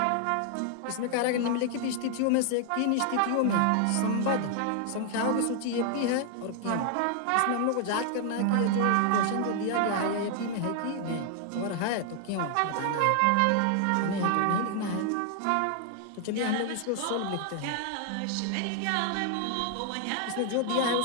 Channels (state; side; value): different; both; correlation 0.00